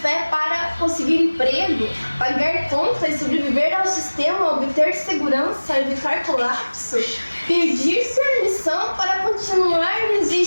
para conseguir emprego, pagar contas, sobreviver ao sistema, obter segurança, evitar colapso, pedir permissão para continuar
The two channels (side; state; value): both; inverted; correlation -1.00